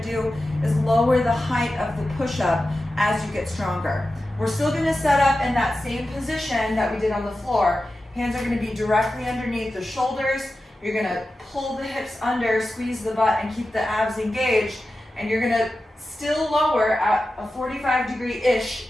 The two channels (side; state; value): both; normal; correlation 0.93